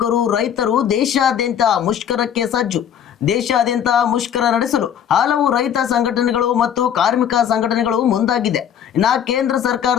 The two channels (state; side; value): quieter; right; 9.1 dB